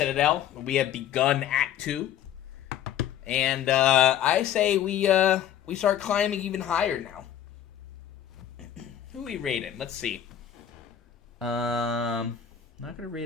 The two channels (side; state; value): right; quieter; 10.2 dB